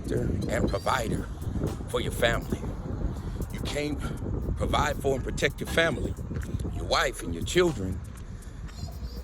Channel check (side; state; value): both; identical; correlation 1.00